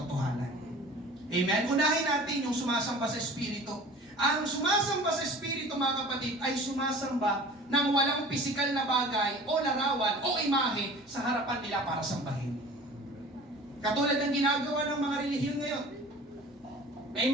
Amen? Unahin natin yung sumasamba sa Espiritu. Ang sumasamba sa Espiritu, mga kapatid, ay sumasamba ng walang pisikal na bagay o larawan o imahe sa harapan nila para sambahin. Katulad ng ginagawa ng mga relihiyon ngayon. May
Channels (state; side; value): normal; both; correlation 0.43